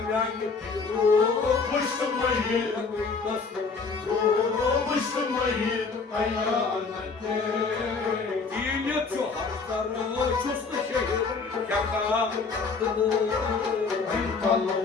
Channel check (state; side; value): quieter; right; 4.7 dB